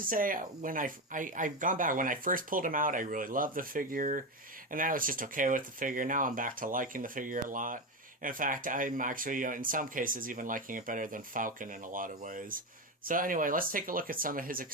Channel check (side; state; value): both; normal; correlation 0.15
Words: say, when I've gone back, when I first pulled him out, I really loved the figure. And I was just okay with the figure. Now I'm back to liking the figure a lot. In fact, I'm actually, in some cases, even liking it better than Falcon in a lot of ways. So anyway, let's take a look at some of his